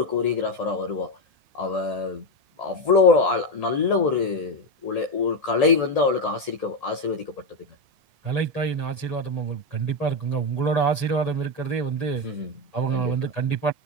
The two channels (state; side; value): late; left; 1.8 ms